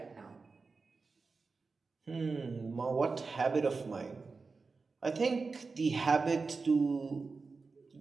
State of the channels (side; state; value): left; quieter; 4.3 dB